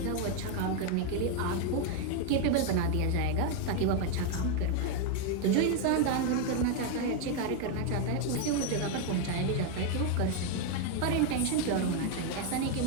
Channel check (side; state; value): both; different; correlation 0.01